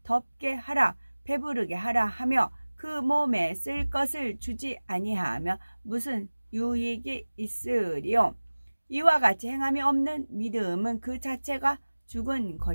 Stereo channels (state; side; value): inverted; both; correlation -1.00